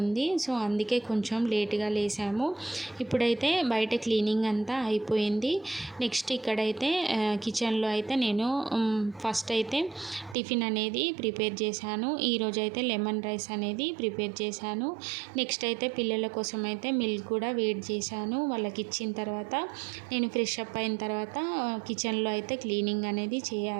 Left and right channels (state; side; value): drops out; left; at 10.4 s